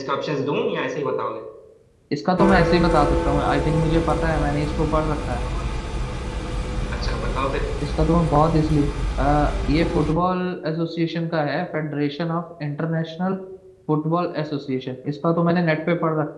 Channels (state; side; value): identical; both; correlation 1.00